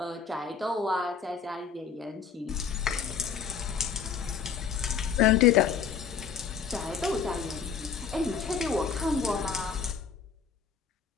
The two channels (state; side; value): quieter; right; 6.5 dB